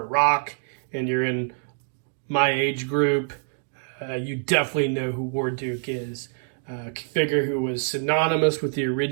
rock and you're in my age group, you definitely know who Warduke is. A figure who was synonymous with the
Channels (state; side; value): silent; left; 61 dB below the other